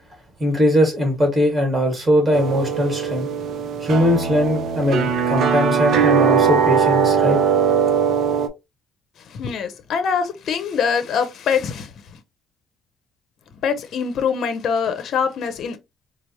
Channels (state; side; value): normal; both; correlation 0.50